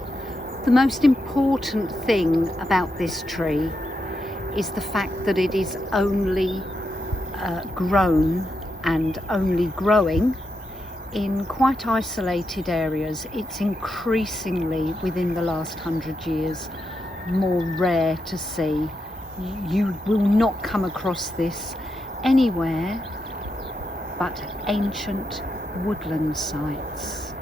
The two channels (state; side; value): normal; both; correlation 0.84